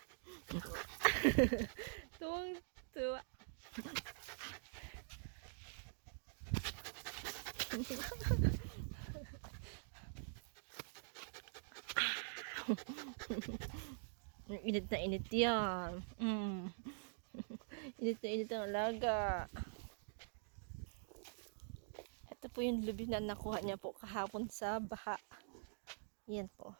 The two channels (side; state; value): left; silent; digital silence